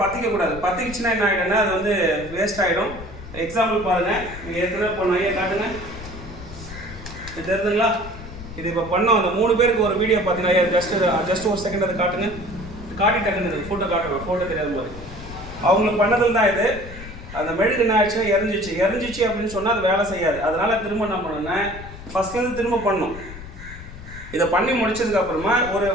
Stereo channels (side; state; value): left; noise; rumble, 13 dB below the sound